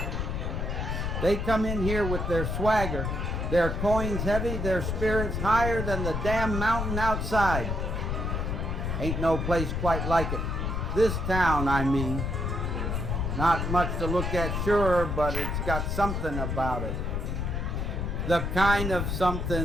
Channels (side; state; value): left; noise; rumble, 1 dB below the sound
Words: They come in here with their swagger, their coins heavy, their spirits higher than the damn mountain outside. Ain't no place quite like it. This town, I mean. Not much to look at, sure, but it's got something about it. The kind of